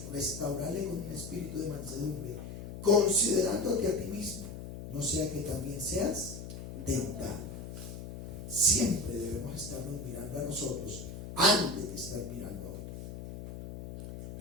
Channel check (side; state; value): left; noise; hum, 9 dB below the sound